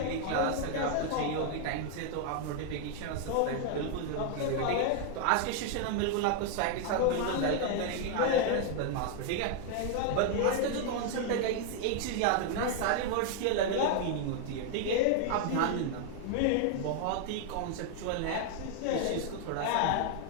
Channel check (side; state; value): both; different; correlation 0.00